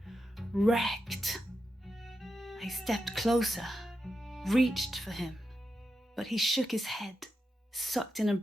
wrecked. I stepped closer, reached for him, but he shook his head, sucked in a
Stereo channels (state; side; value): normal; both; correlation 0.88